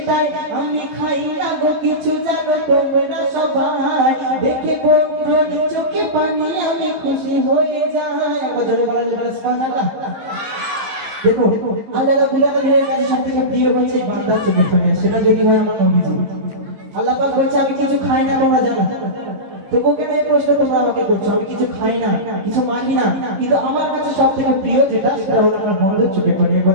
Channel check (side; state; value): left; late; 15 ms